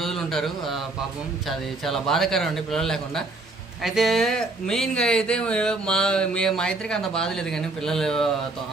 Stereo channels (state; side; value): quieter; left; 3.2 dB